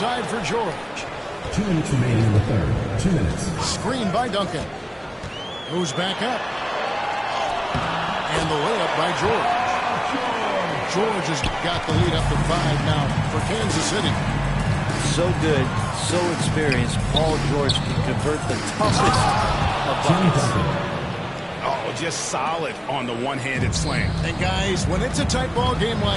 for George. 2 minutes remaining in the third. 2 minutes. Screen by Duncan. Moves back up. And the layup by George. George has got the lead up to 5 now for Kansas City. So good, so experienced. Paul George can convert the toughest of buckets. Oh, just solid on the one-handed slam. And guys, when it's a tight ball game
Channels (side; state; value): both; identical; correlation 1.00